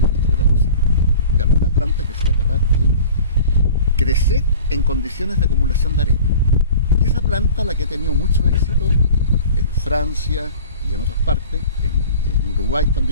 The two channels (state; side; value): inverted; both; correlation -0.42